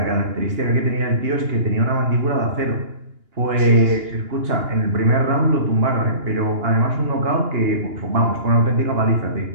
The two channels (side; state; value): left; late; 2.8 ms